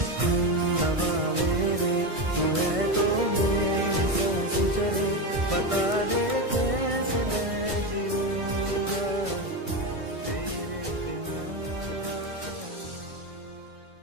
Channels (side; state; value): left; late; 1.6 ms